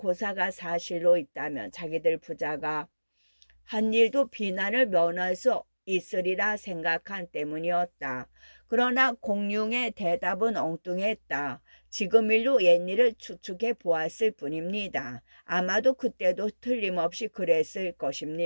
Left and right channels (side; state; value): both; inverted; correlation -1.00